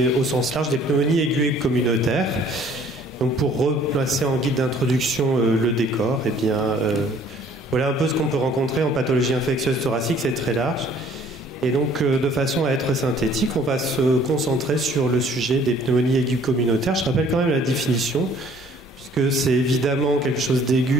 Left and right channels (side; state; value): both; normal; correlation 0.56